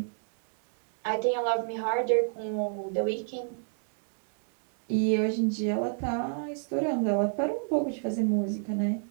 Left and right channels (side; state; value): left; silent; digital silence